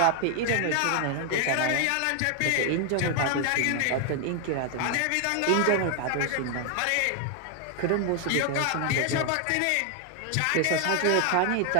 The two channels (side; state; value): both; different; correlation 0.00